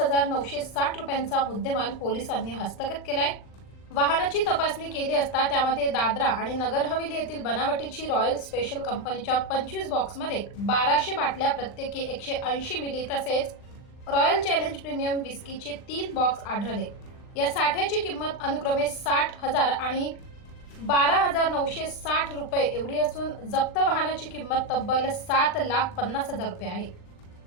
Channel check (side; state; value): right; late; 39 ms